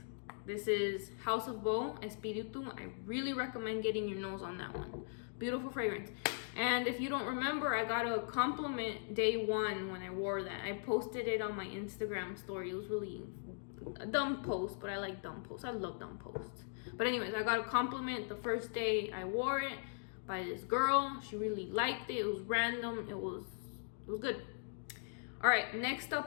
This is House of Beau, Espiritu. I really recommend getting your nose on that one. Beautiful fragrance. And if you don't remember, I got a compliment day 1 when I wore that. I posted it on my Instagram story. It was really a dumb post, but I like dumb posts. I love dumb posts. But anyways, I got a compliment the first day I wore it by this girl. She really liked it. It was random. It was good. All right, next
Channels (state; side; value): silent; right; digital silence